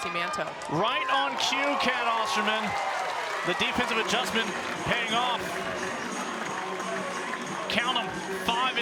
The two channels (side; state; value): both; identical; correlation 1.00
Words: Manto. Right on cue, Kat Osterman. The defensive adjustment paying off. Count them, 5